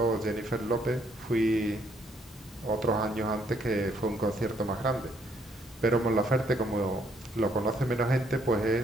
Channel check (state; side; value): normal; both; correlation 0.69